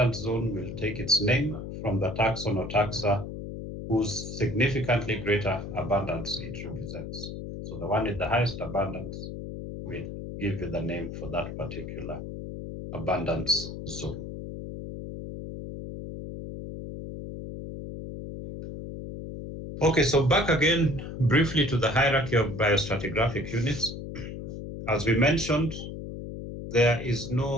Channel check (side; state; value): left; noise; hum, 8 dB below the sound